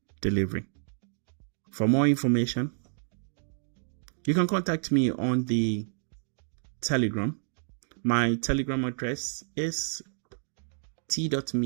delivery. For more information, you can contact me on the Telegram. My Telegram address is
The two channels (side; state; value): left; silent; digital silence